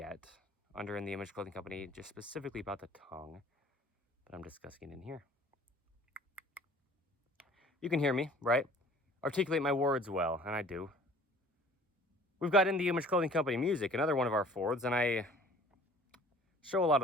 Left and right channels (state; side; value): normal; both; correlation 0.50